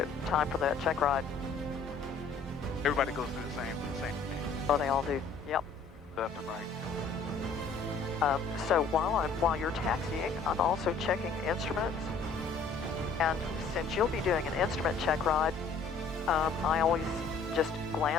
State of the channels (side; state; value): right; quieter; 4.6 dB